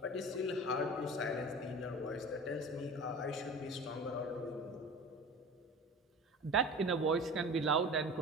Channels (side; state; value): both; normal; correlation 0.36